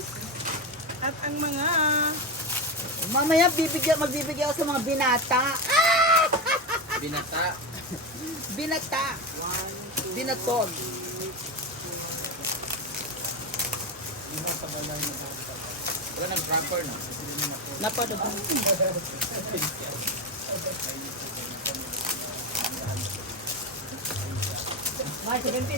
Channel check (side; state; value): both; normal; correlation 0.15